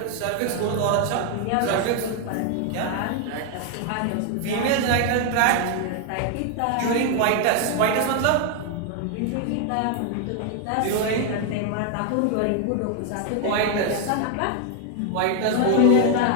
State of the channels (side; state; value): both; different; correlation 0.00